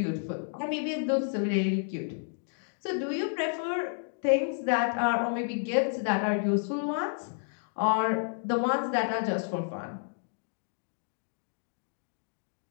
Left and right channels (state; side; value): silent; right; digital silence